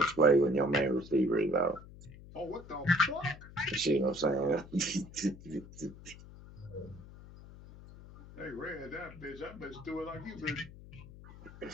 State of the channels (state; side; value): noise; left; hum, 17 dB below the sound